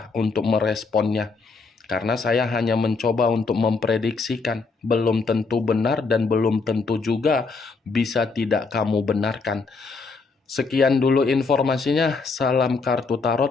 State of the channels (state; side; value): quieter; right; 4.3 dB